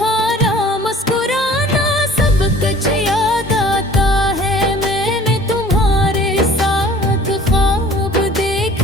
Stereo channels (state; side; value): normal; both; correlation 0.49